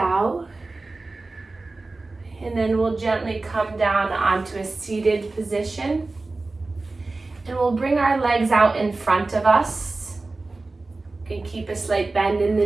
And then we'll gently come down onto a seated position. And we'll bring our legs out in front of us. You can keep a slight bend in the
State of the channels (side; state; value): left; quieter; 3.4 dB